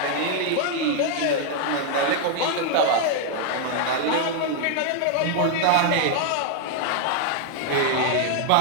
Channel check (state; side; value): different; both; correlation 0.00